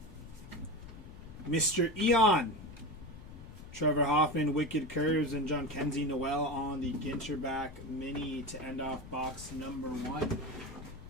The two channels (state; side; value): noise; left; rumble, 15 dB below the sound